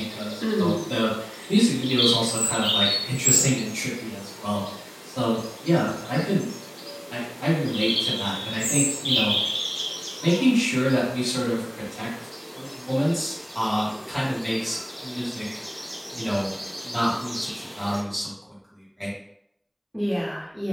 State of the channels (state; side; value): identical; both; correlation 1.00